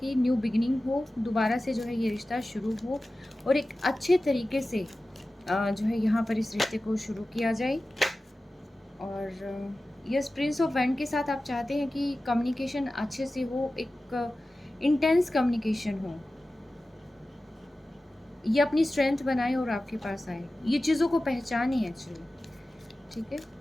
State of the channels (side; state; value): both; normal; correlation 0.95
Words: न्यू बिगिनिंग हो, दोबारा से जो है ये रिश्ता शुरू हो, और एक अच्छे तरीके से जो है यहाँ पर इस रिश्ते को शुरू किया जाए। और यस, प्रिंस ऑफ वैंड के साथ आप चाहते हैं कि कम्युनिकेशन अच्छे से हो, एक इंटेंस कम्युनिकेशन हो, ये अपनी स्ट्रेंथ बनाए और आपके पास आए, ये चीज़ों को पहचाने एक्चुअली, ठीक है?